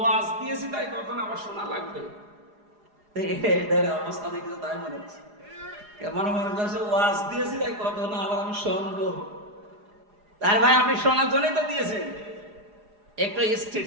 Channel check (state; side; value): late; left; 4.8 ms